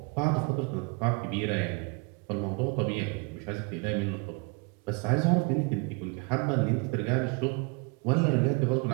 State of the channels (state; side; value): quieter; left; 31.7 dB